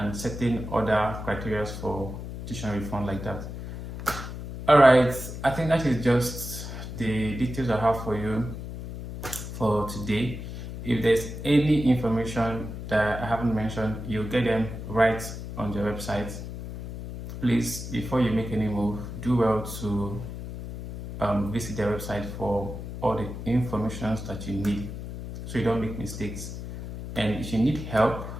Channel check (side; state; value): left; noise; hum, 8 dB below the sound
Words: certain other criteria for tuition refund like that. All right, I think that is just the details I have for you for today. If there's any information that I haven't mentioned, you'll get them right on the website. Please, before you make any move, do well to visit the website for all the information that you need, so you don't make mistakes. And if you need help,